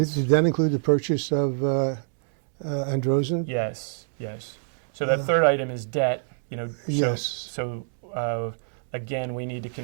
Did that include the purchase of Androzen? Yes, yes. So that third item is debt. Yes. So again, we need to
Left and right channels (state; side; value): silent; left; digital silence